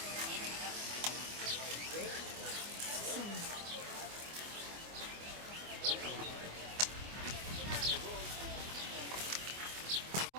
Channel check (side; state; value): left; late; 24 ms